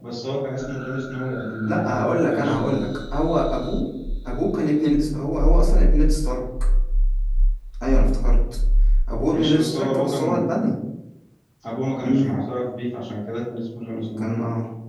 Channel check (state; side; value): identical; both; correlation 1.00